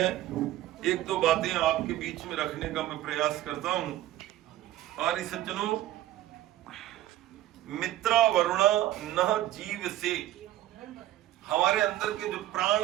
एक दो बातें आपके बीच में रखने का मैं प्रयास करता हूं। आर्य सज्जनों, मित्रा वरुणा न जीव से, हमारे अंदर के जो प्राण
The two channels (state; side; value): quieter; left; 14.2 dB